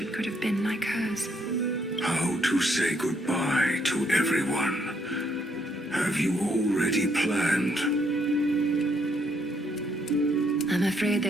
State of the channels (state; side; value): normal; both; correlation 0.72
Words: could have been like hers. How to say goodbye to everyone? Have you already planned? I'm afraid